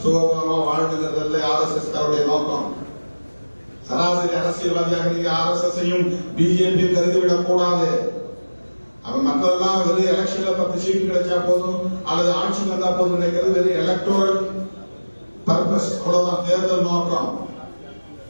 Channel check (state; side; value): inverted; both; correlation -1.00